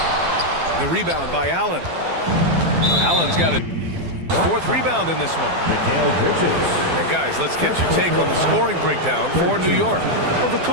The rebound by Allen. Allen's got a 4th rebound in this one. And guys, let's get your take on the scoring breakdown for New York. Well, the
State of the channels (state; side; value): late; left; 12 ms